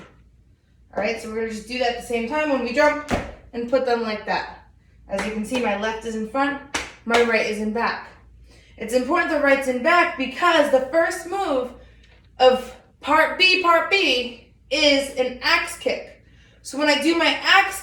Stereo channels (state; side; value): identical; both; correlation 1.00